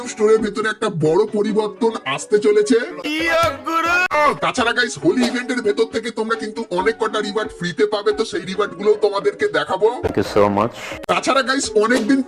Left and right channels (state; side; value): identical; both; correlation 1.00